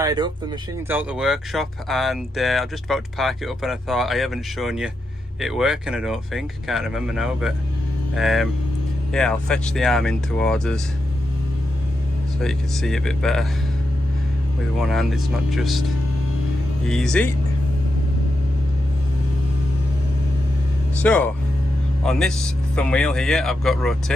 up, the machine's out the workshop, and I'm just about to park it up, and I thought I haven't shown you it working, I don't think, can't remember now, but yeah, I'll fetch the arm in towards us so you can see it a bit better. With one hand it's not just easy. So on this thumb wheel here I've got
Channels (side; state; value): both; normal; correlation 0.86